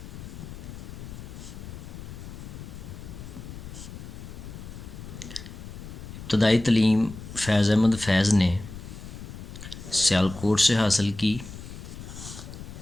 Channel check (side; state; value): left; noise; rumble, 12 dB below the sound